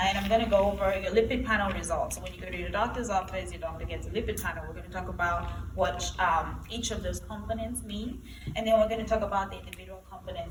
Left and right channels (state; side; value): identical; both; correlation 1.00